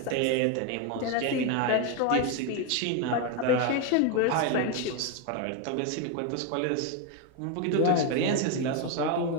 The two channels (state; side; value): different; both; correlation 0.02